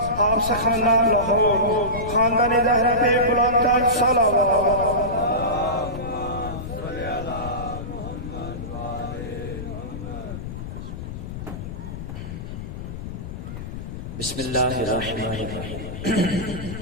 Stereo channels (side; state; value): left; noise; rumble, 8 dB below the sound